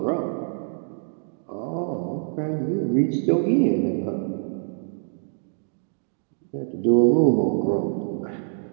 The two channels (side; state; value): left; silent; digital silence